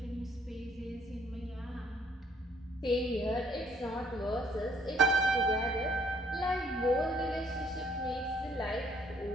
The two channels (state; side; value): normal; both; correlation 0.63